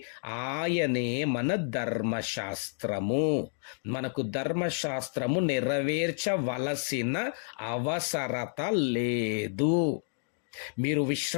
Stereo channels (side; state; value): right; silent; digital silence